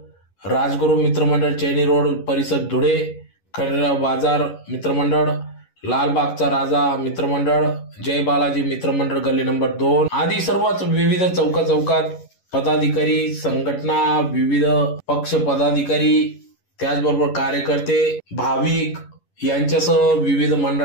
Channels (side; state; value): right; late; 11 ms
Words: राजगुरू मित्रमंडळ चैनी रोड परिसर धुळे, खंडेराव बाजार मित्रमंडळ, लालबागचा राजा मित्रमंडळ, जय बालाजी मित्रमंडळ गल्ली नंबर 2 आदी सर्वच विविध चौकात पदाधिकारी, संघटना, विविध पक्ष पदाधिकारी, त्याचबरोबर कार्यकर्ते, भाविक यांच्यासह विविध